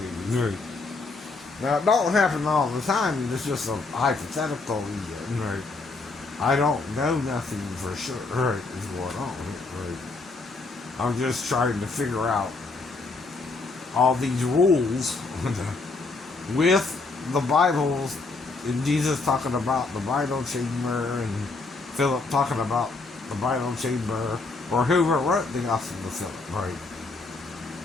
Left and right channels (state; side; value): quieter; right; 3.7 dB